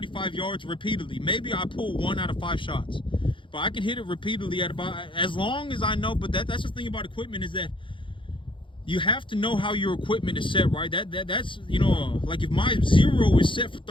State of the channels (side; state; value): right; late; 0.24 ms